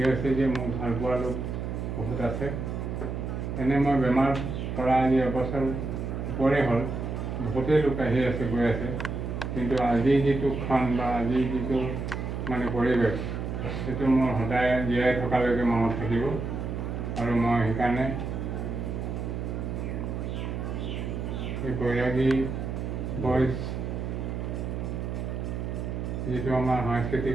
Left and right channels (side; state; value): right; noise; hum, 4 dB below the sound